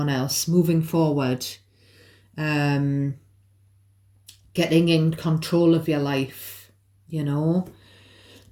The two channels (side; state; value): both; identical; correlation 1.00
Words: else, moving forward, getting in control of your life,